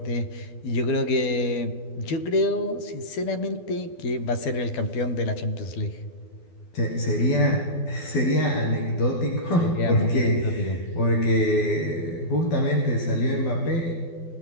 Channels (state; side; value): late; right; 12 ms